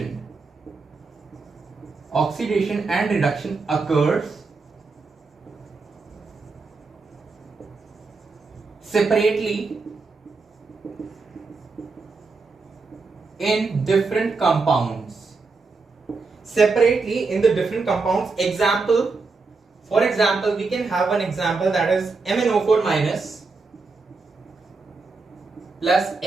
and reduction occurs separately in different compounds. Separately in the different compounds. For example, we can have an example, that is MnO4 minus plus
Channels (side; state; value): left; quieter; 4.1 dB